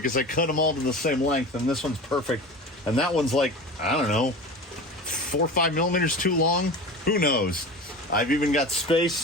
I cut them all to the same length, and this one's perfect. And that one's like, I don't know, 4 or 5 millimeters too long. Who knows? I've even got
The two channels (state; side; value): normal; both; correlation 0.32